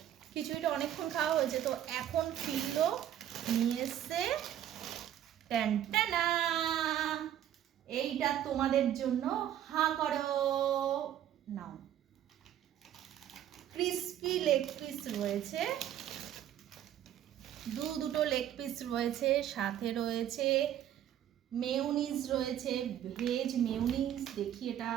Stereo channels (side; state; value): left; quieter; 11.1 dB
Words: খিচুড়িটা অনেকক্ষণ খাওয়া হয়েছে, তো এখন ফিরলো নিয়ে এসছে টানটানা, এইটা তোমাদের জন্য, হাঁ করো, নাও। ক্রিস্পি লেগ পিস রয়েছে, দুটো লেগ পিস রয়েছে, সাথে রয়েছে মেয়োনিজ রয়েছে, ভেজ মেয়োনিজ। দেখি এটা